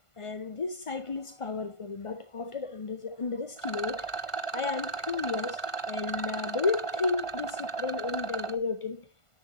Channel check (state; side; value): late; right; 1.5 ms